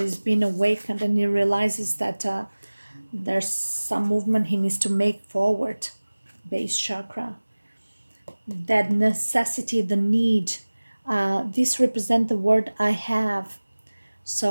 being awakened, and he realizes that there's some movement he needs to make forward. Base chakra, that necessity, the need. This represent the word I have.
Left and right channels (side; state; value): both; inverted; correlation -1.00